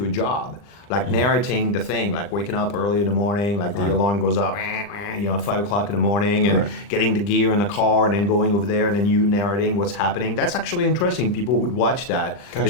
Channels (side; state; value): right; late; 40 ms